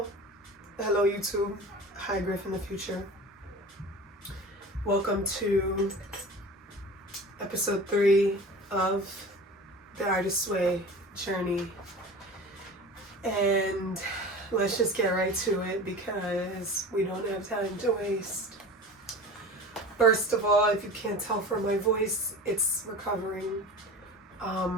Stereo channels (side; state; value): both; normal; correlation 0.36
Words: Hello, YouTube. Hi, Griff in the future. Welcome to episode 3 of the Artist's Way journey. And let's just get right to it because we don't have time to waste. First of all, if you can't tell from my voice, it's recovering.